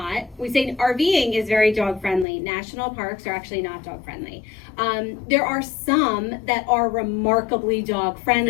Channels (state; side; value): drops out; right; at 2.2 s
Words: we say RVing is very dog friendly. National parks are actually not dog friendly. There are some that are remarkably dog